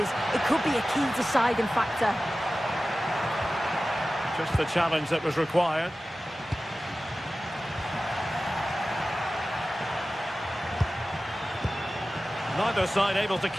it could be a key deciding factor. Just the challenge that was required. Neither side able to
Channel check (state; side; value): normal; both; correlation 0.95